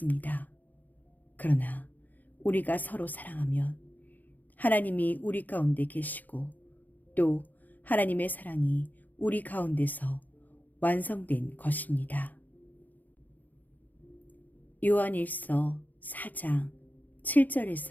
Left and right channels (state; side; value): late; right; 0.083 ms